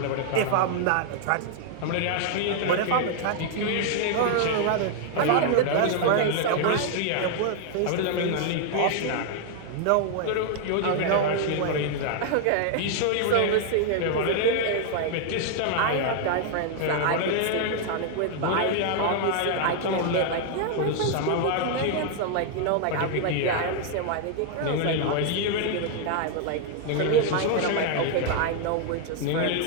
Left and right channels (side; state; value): both; different; correlation 0.00